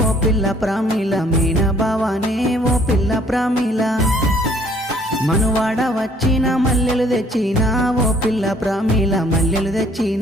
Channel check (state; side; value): normal; both; correlation 0.60